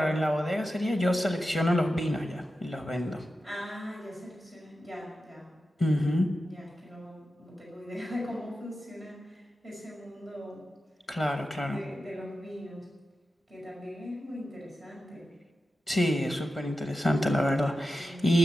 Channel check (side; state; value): both; normal; correlation 0.92